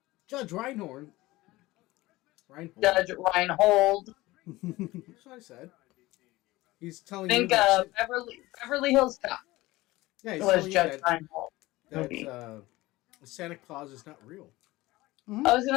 Judge Reinhold. Judge Reinhold. That's what I said. He's telling Think you that Beverly Hills Cop yeah, he's was telling you Judge Reinhold. that Santa Claus is not real. Mm-hmm. I was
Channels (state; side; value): quieter; right; 19.1 dB